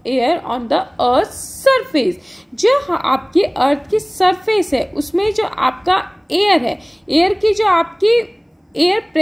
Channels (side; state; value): both; identical; correlation 1.00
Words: air on the earth's surface. जो आपकी अर्थ की surface है उसमें जो आपका air है, air की जो आपकी एयर